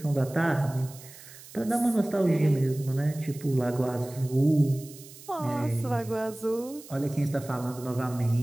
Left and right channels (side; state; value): right; noise; hiss, 18 dB below the sound